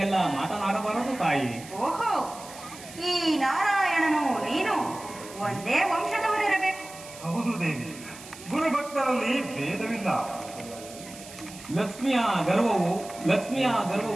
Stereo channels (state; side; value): noise; right; hiss, 16 dB below the sound